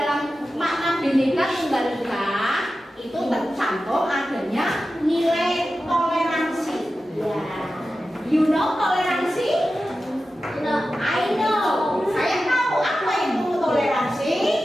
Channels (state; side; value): normal; both; correlation 0.93